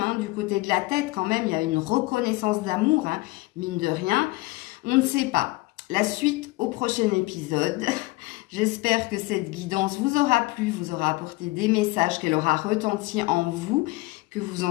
hein, du côté de la tête quand même, il y a une reconnaissance d'amour, hein, mine de rien. On ne sait pas. La suite au prochain épisode. J'espère que cette guidance vous aura plu, vous aura apporté des messages, qu'elle aura retenti en vous, que vous en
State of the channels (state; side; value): quieter; right; 22.0 dB